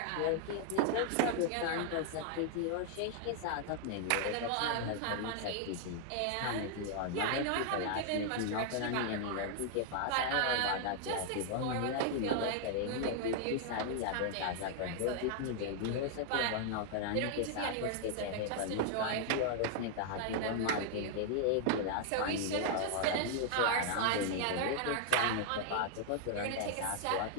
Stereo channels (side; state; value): both; different; correlation 0.00